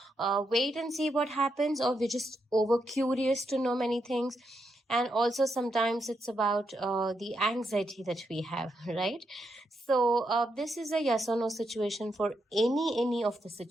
wait and see what happens, or we're just over curious to know many things. And also sometimes it's about the anxiety that we have, right? So this is a yes or no situation for any of the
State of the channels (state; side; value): normal; both; correlation 0.82